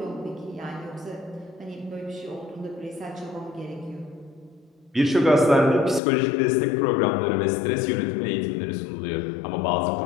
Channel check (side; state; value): right; drops out; at 6.0 s